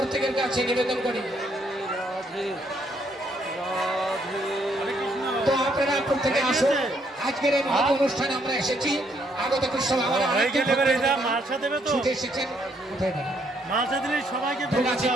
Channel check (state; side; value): normal; both; correlation 0.71